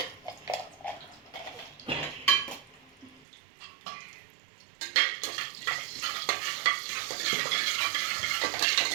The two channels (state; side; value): drops out; left; at 3.2 s